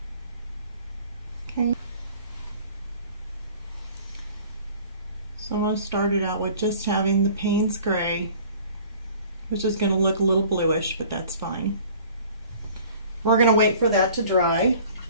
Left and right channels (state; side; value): inverted; both; correlation -0.49